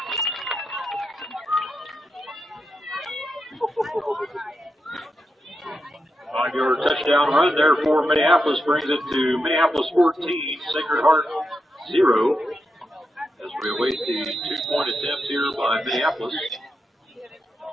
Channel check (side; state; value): both; normal; correlation 0.85